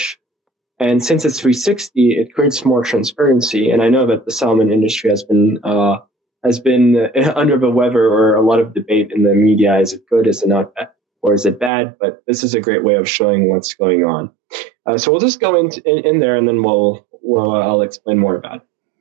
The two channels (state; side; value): drops out; left; at 11.7 s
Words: And since it's 360, it creates more transparency. And I know that the salmon industry has been under the weather, or a lot of debate in the media. Is it good? Is it not? Or is it bad? But this is a great way of showing what's going on. So we'll just go in there, and then I'll explain more about it.